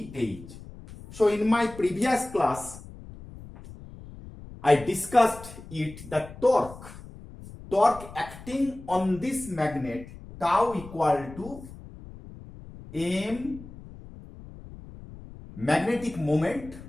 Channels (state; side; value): noise; left; rumble, 16 dB below the sound